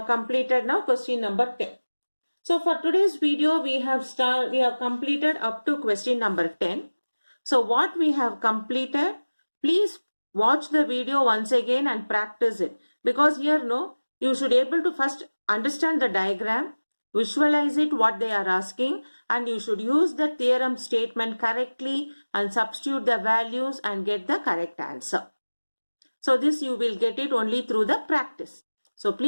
completed now question number 10. So for today's video, we have completed up to question number 10. So what we have completed, please watch the video once again and practice it. Because here, you should able to first understand the diagram, visualize it what they are asking, and you should use the theorem statement correctly and substitute the values and get the correct answer. So this you will get it only through the practice. So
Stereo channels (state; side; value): inverted; both; correlation -1.00